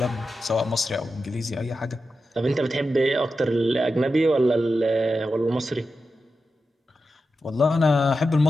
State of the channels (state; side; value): normal; both; correlation 0.90